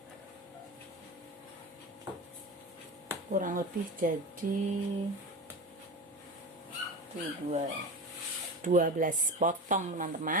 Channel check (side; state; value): both; normal; correlation 0.26